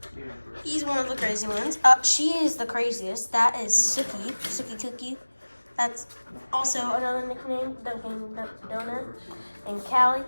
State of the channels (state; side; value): inverted; both; correlation -1.00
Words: He's one of the crazy ones. She is the craziest. That is Sookie Cookie. That's also another nickname, Dunkin' Donut. And Callie,